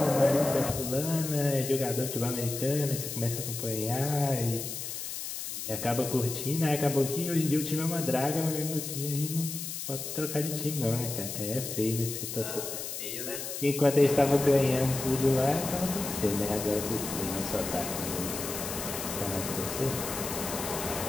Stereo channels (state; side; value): noise; left; hiss, 6 dB below the sound